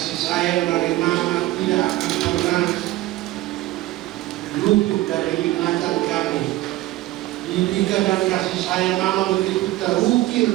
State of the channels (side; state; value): left; quieter; 17.3 dB